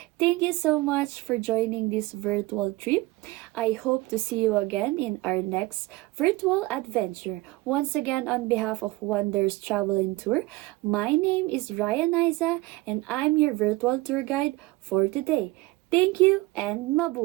Thank you so much for joining this virtual trip. I hope to see you again in our next virtual adventure. Once again, on behalf of Wonders Travel and Tour, my name is Ryan Isa and I'm your virtual tour guide for today. Thank you and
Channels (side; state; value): left; quieter; 20.4 dB